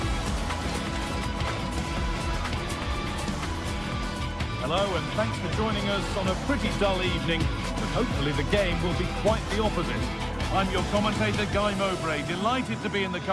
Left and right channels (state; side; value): identical; both; correlation 1.00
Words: Hello and thanks for joining us on a pretty dull evening, but hopefully the game will be quite the opposite. I'm your commentator, Guy Mowbray, delighted to be in the